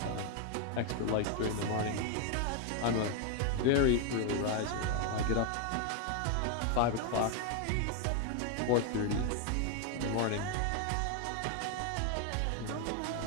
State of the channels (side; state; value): both; different; correlation 0.01